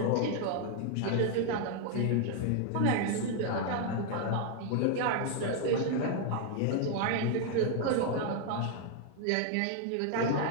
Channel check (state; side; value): different; both; correlation 0.00